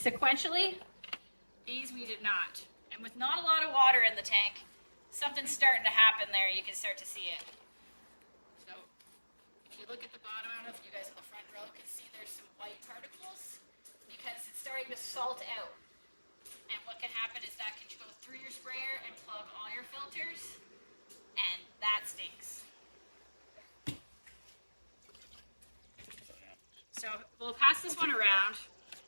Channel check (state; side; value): inverted; both; correlation -1.00